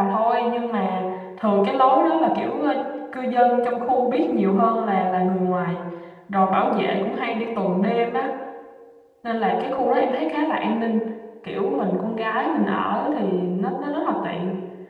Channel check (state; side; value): identical; both; correlation 1.00